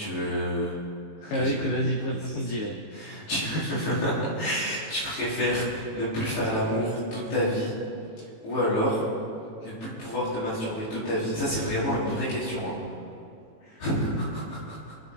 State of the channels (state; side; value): late; right; 18 ms